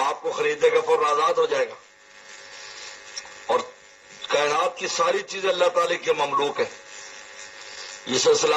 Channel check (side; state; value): both; identical; correlation 1.00